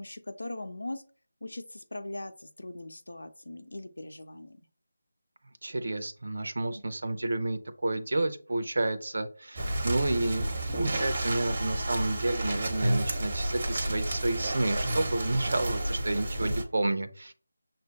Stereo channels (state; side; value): inverted; both; correlation -0.96